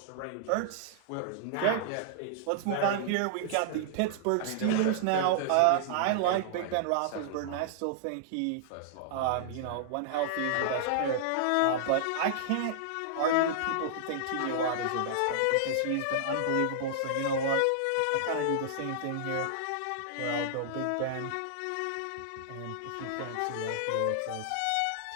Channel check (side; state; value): both; different; correlation -0.01